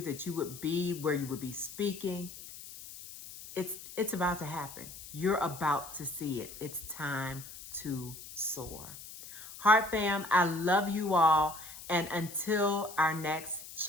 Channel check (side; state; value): left; noise; hiss, 14 dB below the sound